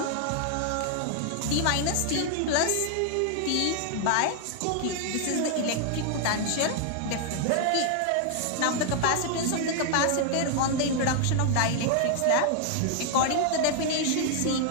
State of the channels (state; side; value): different; both; correlation 0.00